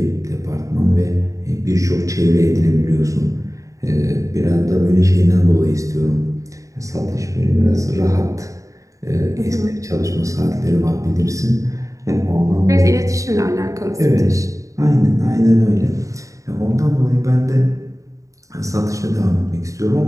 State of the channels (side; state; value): left; late; 0.16 ms